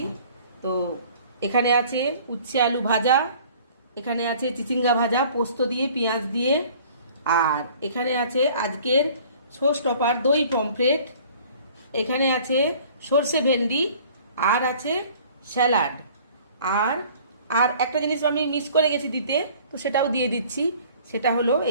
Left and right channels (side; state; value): both; inverted; correlation -0.51